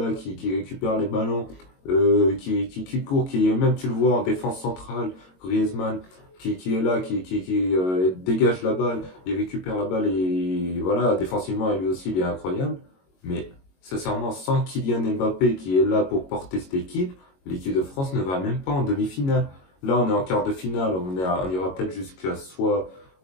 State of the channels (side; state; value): right; late; 22 ms